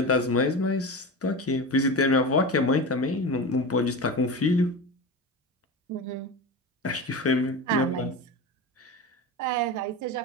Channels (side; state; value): both; normal; correlation 0.26